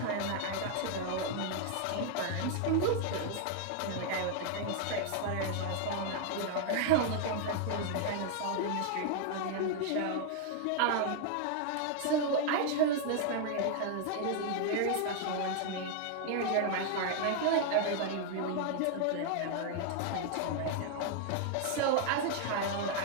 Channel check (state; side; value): different; both; correlation 0.00